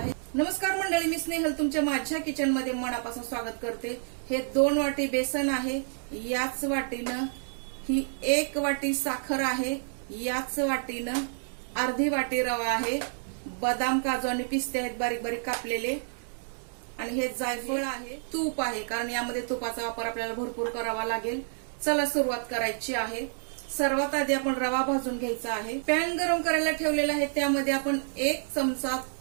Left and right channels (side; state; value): left; silent; digital silence